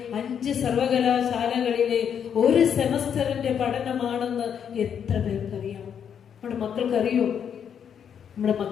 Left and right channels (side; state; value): right; quieter; 8.1 dB